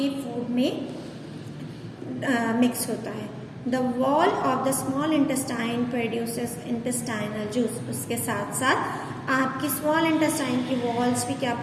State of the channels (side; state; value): both; identical; correlation 1.00